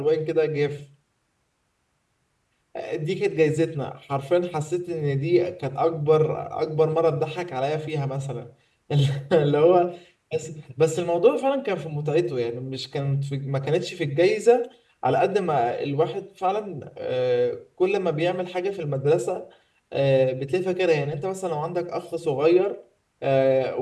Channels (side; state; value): both; identical; correlation 1.00